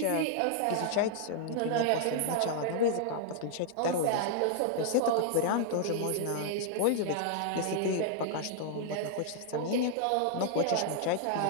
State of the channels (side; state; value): both; different; correlation -0.01